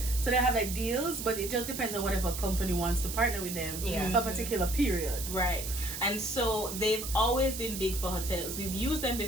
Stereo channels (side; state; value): right; noise; hiss, 7 dB below the sound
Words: So they have like deals, but it just depends on whatever company wants to partner with them for a particular period. Right. And so they've always been big for hotels. We've used them